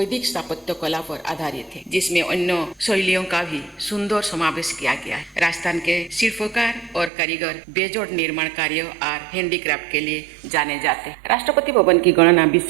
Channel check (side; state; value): left; drops out; at 7.1 s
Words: स्थापत्य कला पर आधारित है, जिसमें अन्य शैलियों का भी सुंदर समावेश किया गया है। राजस्थान के शिल्पकार और कारीगर बेजोड़ निर्माण कार्य और हैंडीक्राफ्ट के लिए जाने जाते हैं। राष्ट्रपति भवन की गणना